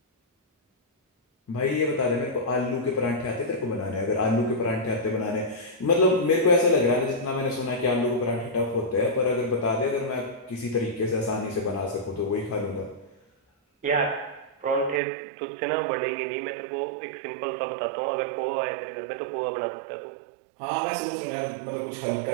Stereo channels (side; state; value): left; drops out; at 15.0 s